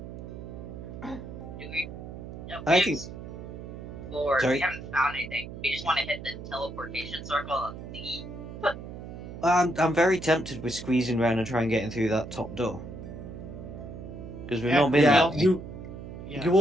Do we? No, I think- Lord, Sorry? we haven't found anything. We just want to hit the teleportation circle and leave. I'm very tempted with squeezing around and trying getting through that top door. Because we've Yeah, not been Yeah, that way. Yeah. you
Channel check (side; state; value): right; noise; hum, 11 dB below the sound